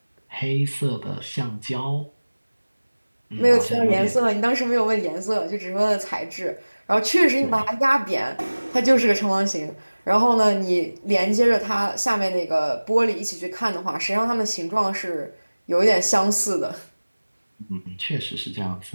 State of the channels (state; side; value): inverted; both; correlation -1.00